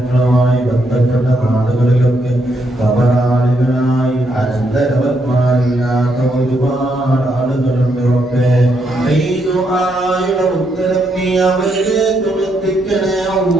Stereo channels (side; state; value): both; normal; correlation 0.77